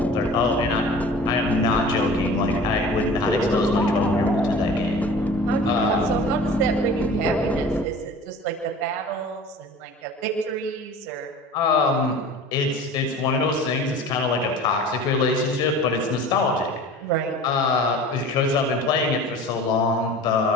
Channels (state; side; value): normal; both; correlation 0.41